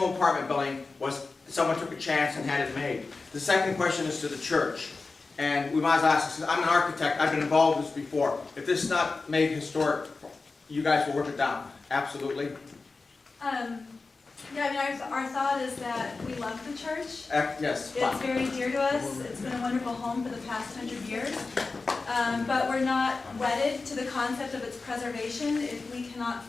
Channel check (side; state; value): right; quieter; 3.9 dB